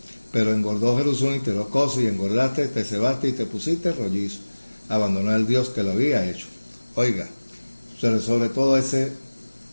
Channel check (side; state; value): both; inverted; correlation -1.00